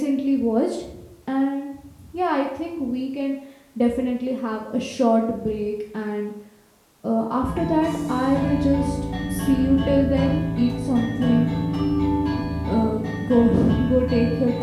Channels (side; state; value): both; identical; correlation 1.00